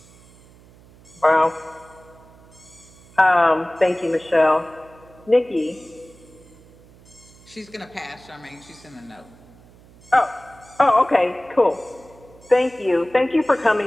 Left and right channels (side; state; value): right; noise; hum, 25 dB below the sound